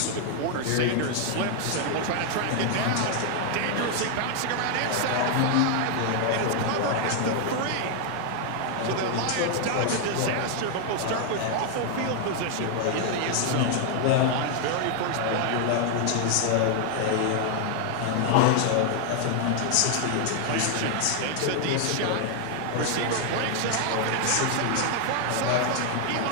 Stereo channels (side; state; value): both; different; correlation 0.00